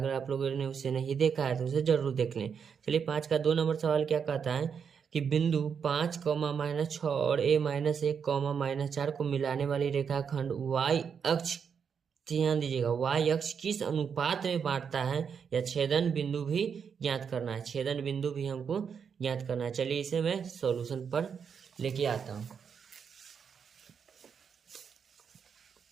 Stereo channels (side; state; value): left; quieter; 6.8 dB